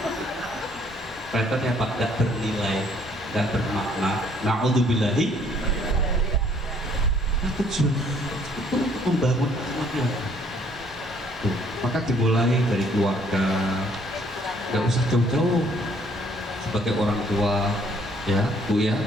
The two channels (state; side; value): normal; both; correlation 0.63